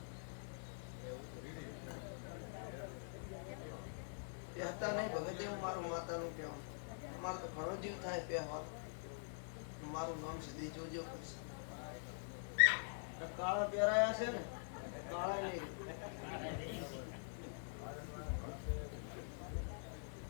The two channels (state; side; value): silent; right; digital silence